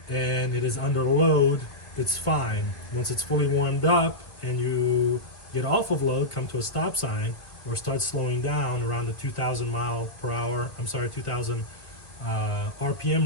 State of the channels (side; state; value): right; late; 1.5 ms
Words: and it is under load, it's fine. Once it's fully warmed up and you get off of load, come to a stop sign, or start slowing down around the 2,000